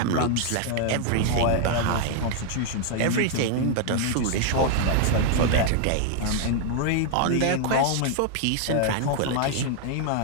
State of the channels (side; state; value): both; different; correlation 0.00